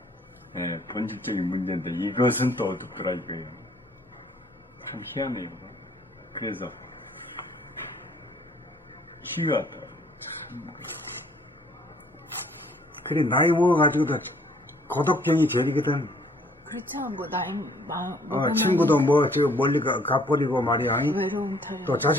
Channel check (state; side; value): normal; both; correlation 0.61